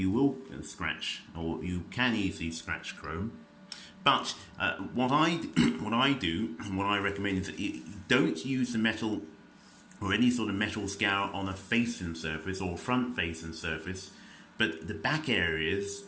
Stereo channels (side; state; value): both; identical; correlation 1.00